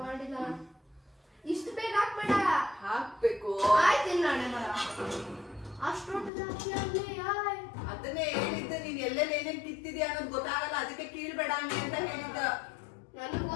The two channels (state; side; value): drops out; right; at 6.3 s